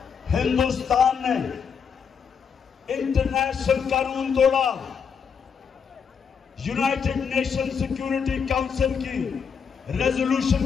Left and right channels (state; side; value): quieter; right; 6.6 dB